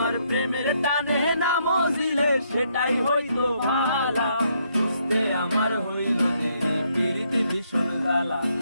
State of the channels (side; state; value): both; inverted; correlation -0.73